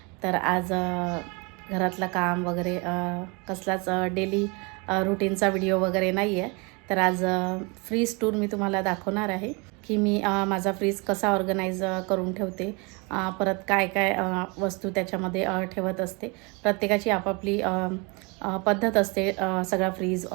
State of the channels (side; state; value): left; quieter; 29.9 dB